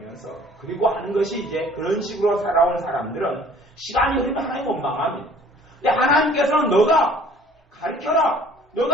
그리고 하는 것이 이제 그런 식으로 살아온 사람들은 시간이 흐르면 하나님 원망합니다. 근데 하나님께서는 너가 가르쳐라.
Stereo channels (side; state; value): both; normal; correlation 0.53